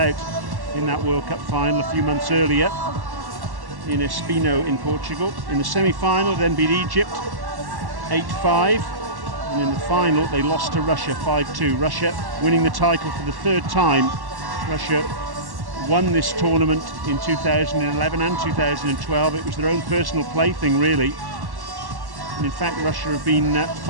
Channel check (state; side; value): late; left; 1.1 ms